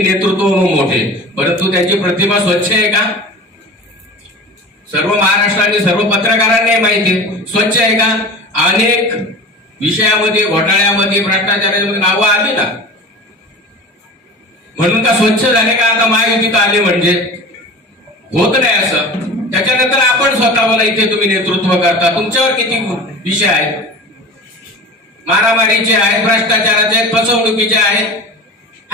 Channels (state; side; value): normal; both; correlation 0.35